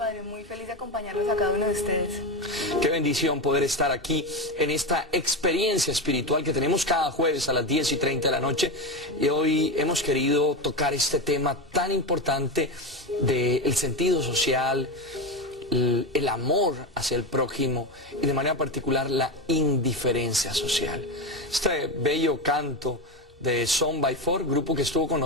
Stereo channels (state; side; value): normal; both; correlation 0.16